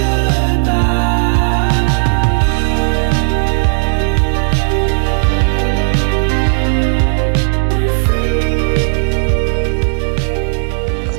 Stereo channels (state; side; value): silent; left; digital silence